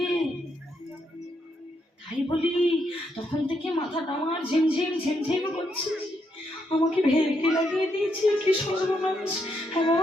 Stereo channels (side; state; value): both; normal; correlation 0.78